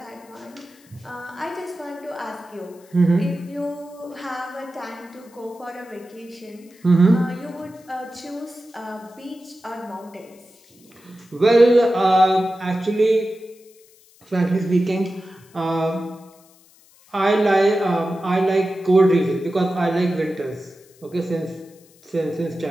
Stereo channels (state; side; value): noise; left; hiss, 28 dB below the sound